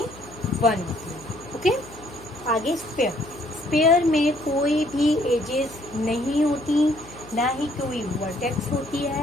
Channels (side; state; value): left; noise; hum, 19 dB below the sound